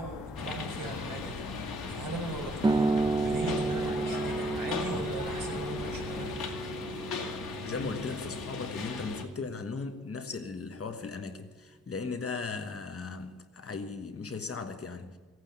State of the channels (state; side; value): normal; both; correlation 0.61